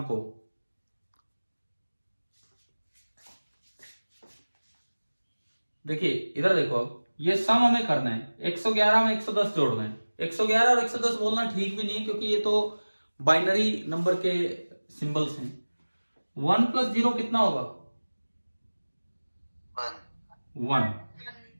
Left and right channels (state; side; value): inverted; both; correlation -1.00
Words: को। देखिए इधर देखो, अब ये सम हमें करना है, 111 में 110 जोड़ना है। 111 और 110 बोलना ठीक भी नहीं है क्योंकि ये तो बाइनरी नंबर के सिंबल्स हैं। 1 प्लस 0 कितना होगा? 1।